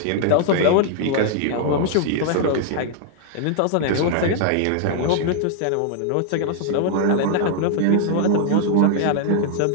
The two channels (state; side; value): different; both; correlation 0.00